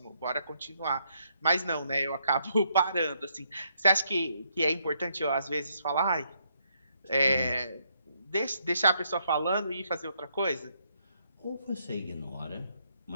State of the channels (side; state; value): both; inverted; correlation -0.74